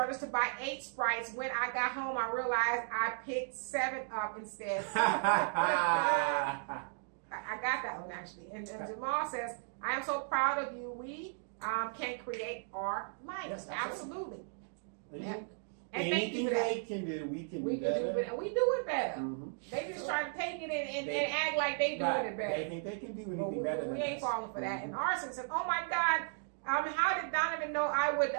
to buy 8 Sprites. When I got home, I realized I picked 7 up instead. I got that one actually. And Jamal says, I am so proud of you. We can create our life. Yes, absolutely. Yeah. And anything they can do, we can do better. And we do it better. Mm-hmm. They just try to take it and act like they doing it better. They think they can do anything better than we ain't us. falling for that. And Arson says, oh my God, how did Donovan know I would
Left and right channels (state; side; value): silent; left; digital silence